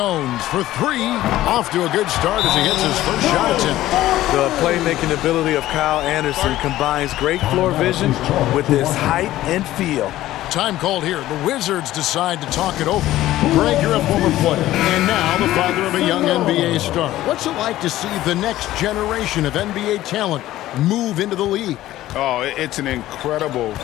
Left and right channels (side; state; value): right; quieter; 14.9 dB